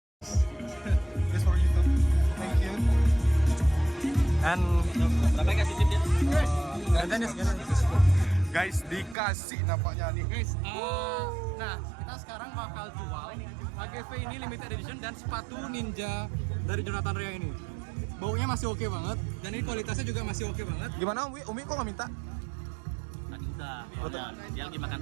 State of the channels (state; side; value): drops out; left; at 9.2 s